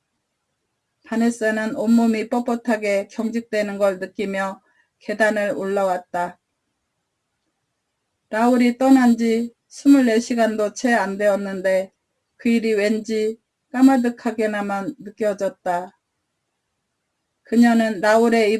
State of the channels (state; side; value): identical; both; correlation 1.00